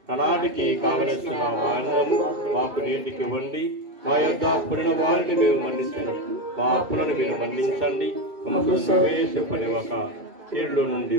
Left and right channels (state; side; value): late; left; 2.7 ms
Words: కనాటికి కావలసిన మాన్యము మాకు నేటికి ఇవ్వండి, మా యొక్క అప్పుడున్న వారిని మేము మన్నించినట్లు మా అప్పులను మీరు మన్నించండి, ప్రవేశపనివ్వక కీడులో నుండి